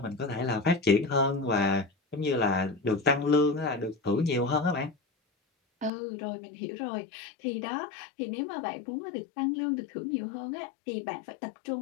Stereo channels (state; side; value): drops out; right; at 5.9 s